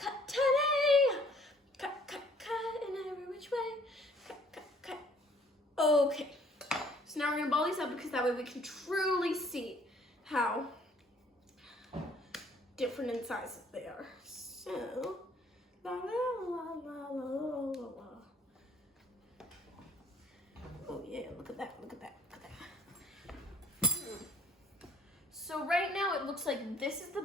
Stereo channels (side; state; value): both; normal; correlation 0.59